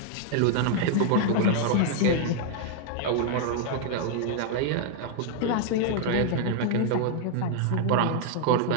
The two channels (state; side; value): different; both; correlation 0.00